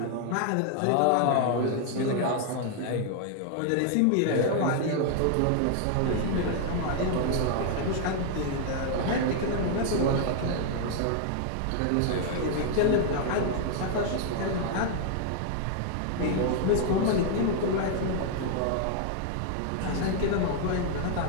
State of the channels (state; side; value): different; both; correlation 0.00